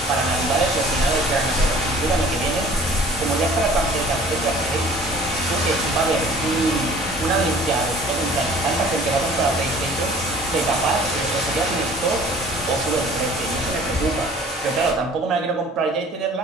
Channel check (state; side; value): normal; both; correlation 0.49